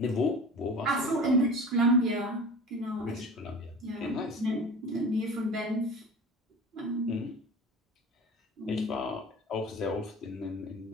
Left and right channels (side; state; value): both; normal; correlation 0.37